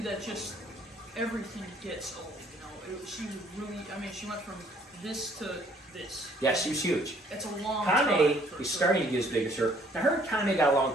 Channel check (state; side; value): normal; both; correlation 0.61